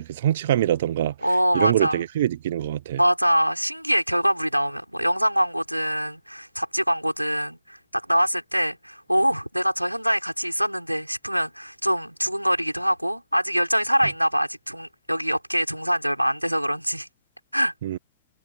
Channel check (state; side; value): inverted; both; correlation -0.93